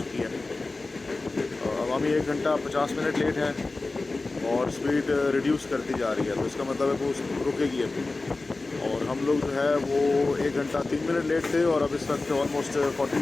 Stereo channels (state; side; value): quieter; right; 3.4 dB